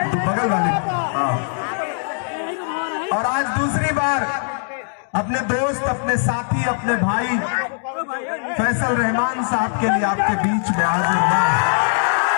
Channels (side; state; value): right; silent; 61 dB below the other